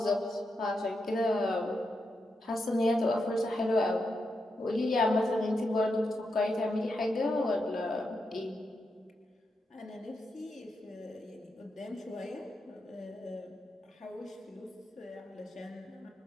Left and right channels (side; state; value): both; normal; correlation 0.85